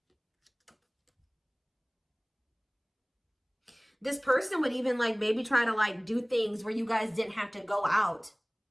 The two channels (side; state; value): both; identical; correlation 1.00